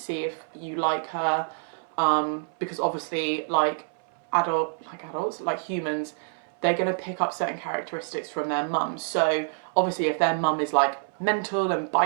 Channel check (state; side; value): silent; left; 58 dB below the other